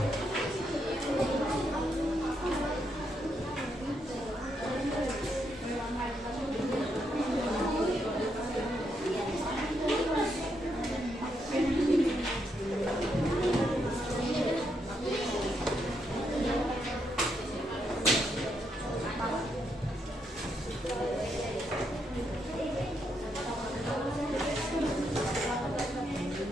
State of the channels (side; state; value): both; normal; correlation 0.79